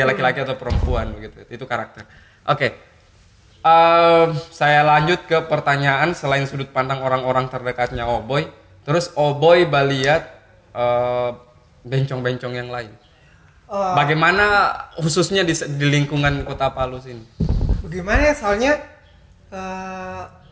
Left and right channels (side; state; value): both; identical; correlation 1.00